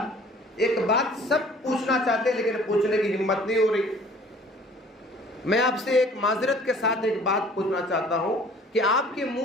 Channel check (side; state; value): both; normal; correlation 0.52